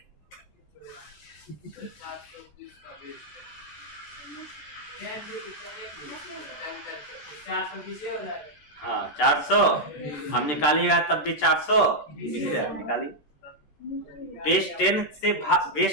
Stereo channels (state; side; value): late; right; 14 ms